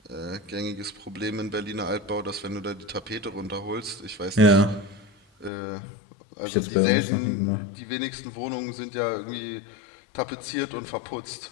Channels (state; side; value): drops out; right; at 5.5 s